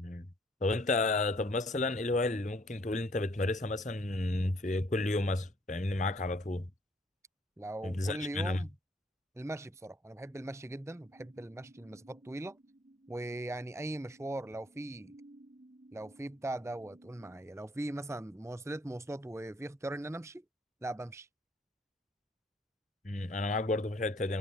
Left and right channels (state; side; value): normal; both; correlation 0.63